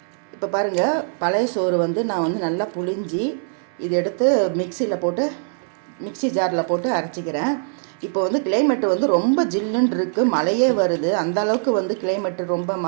பாருங்கள், பழைய சோறு நான் நல்லா புழிஞ்சி இதை எடுத்து மிக்ஸி ஜாரில் போட்டு அரைச்சிக்கிறேன். இப்போ கிளைமேட்டு ரொம்ப ஜில்லுன்னு இருக்குது, மழையே வருது. அந்த அளவுக்கு கிளைமேட்டு ரொம்ப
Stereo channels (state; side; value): silent; left; 64 dB below the other